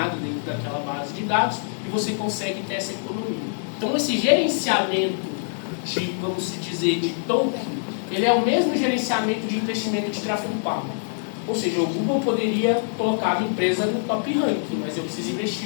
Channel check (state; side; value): silent; right; 62 dB below the other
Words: dentro daquela base de dados e você consegue ter essa economia. Então esse gerenciamento de, vamos dizer, de token, ele é o mesmo gerenciamento de investimento de tráfego pago. Ou seja, o Google poderia colocar a minha empresa no top ranking, mas eu preciso